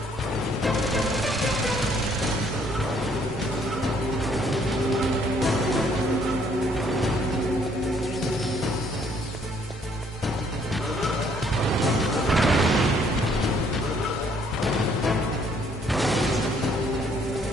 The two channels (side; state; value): both; normal; correlation 0.64